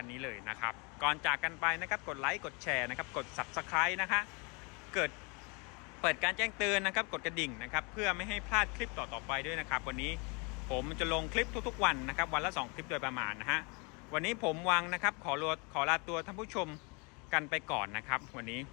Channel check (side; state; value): right; quieter; 31.4 dB